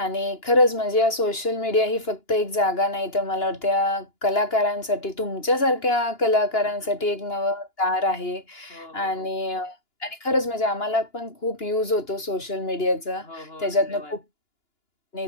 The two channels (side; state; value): right; late; 2.9 ms